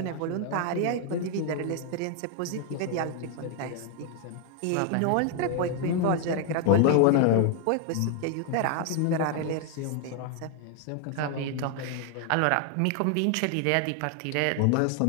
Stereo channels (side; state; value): both; different; correlation 0.00